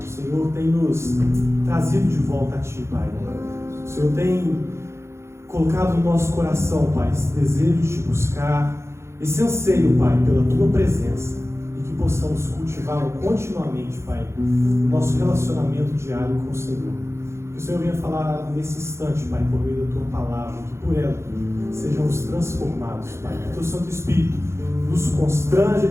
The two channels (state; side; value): late; left; 0.13 ms